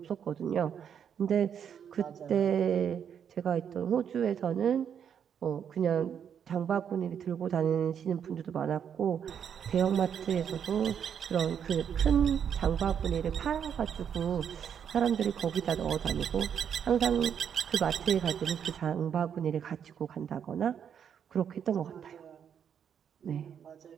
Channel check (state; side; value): quieter; left; 8.2 dB